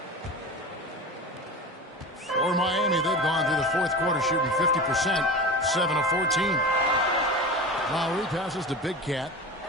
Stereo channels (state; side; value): normal; both; correlation 0.30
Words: For Miami, they've gone through the fourth quarter shooting 50%, 7 of 14. Lowry passes to Big Cat.